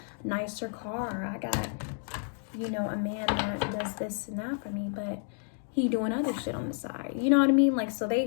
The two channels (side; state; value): right; silent; 57 dB below the other